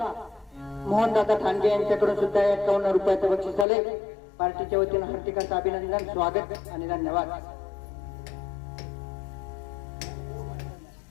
मोहनदादा ठाणगे यांच्याकडून सुद्धा 51 रुपयाचं बक्षीस आले. पार्टीच्या वतीनं हार्दिक असं अभिनंदन, स्वागत आणि धन्यवाद.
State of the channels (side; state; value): right; drops out; at 3.7 s